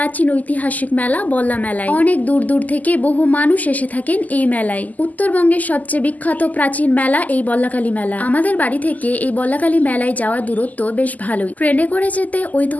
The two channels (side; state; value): right; late; 0.079 ms